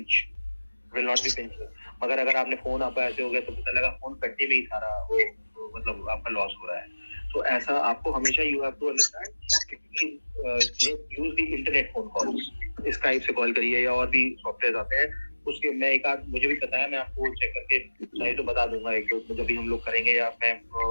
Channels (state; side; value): inverted; both; correlation -1.00